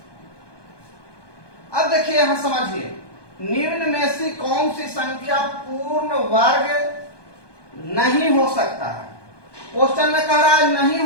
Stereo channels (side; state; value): right; late; 1.2 ms